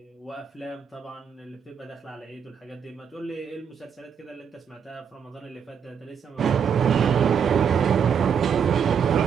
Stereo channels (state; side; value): quieter; left; 7.3 dB